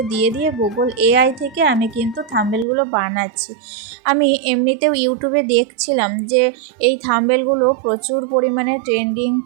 দিয়ে গুগল এআই থেকে আমি কিন্তু থাম্বনেলগুলো বানাচ্ছি। আমি এমনিতেও ইউটিউবে দেখছিলাম যে এই থাম্বনেলগুলো প্রচুর পরিমাণে ট্রেন্ডিং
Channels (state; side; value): drops out; left; at 2.7 s